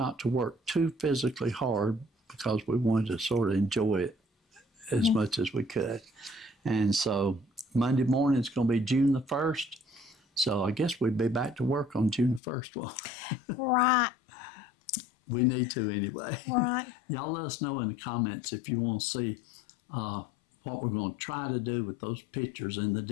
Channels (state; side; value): drops out; right; at 12.4 s